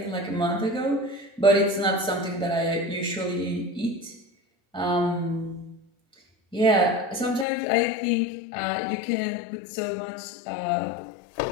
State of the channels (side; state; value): right; drops out; at 7.5 s